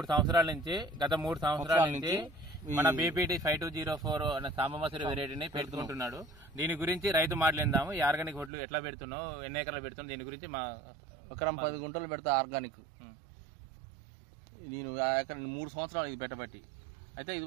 సంవత్సరాల నుంచి మన బీపీటీ 5204 అనే సాంబమసూరి వెరైటీని పెట్టుకుంటున్నాడు. దీని గురించి రైతు మాట్లాడిందాము. ఈ ఆర్గానిక్ వడ్లు ఎట్లా పెడుతున్నావు, ఎన్ని ఎకరాలు పెడుతున్నావు, దీని గురించి మా ఎకరం 10 గుంటలు పెడతా ఆర్గానిక్. నేను ఎకరం 3 సంవత్సరాలు ఇది పెట్టబట్టి. అయితే ఇది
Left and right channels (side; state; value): left; drops out; at 8.5 s